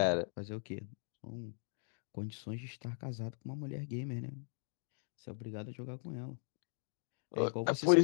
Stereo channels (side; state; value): right; silent; digital silence